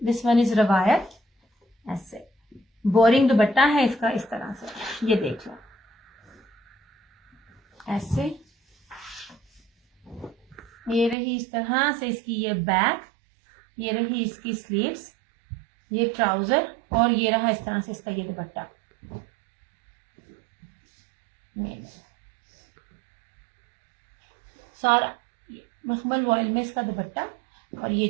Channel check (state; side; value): drops out; left; at 11.2 s